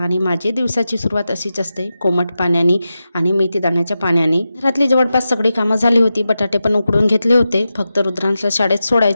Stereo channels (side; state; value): both; inverted; correlation -0.91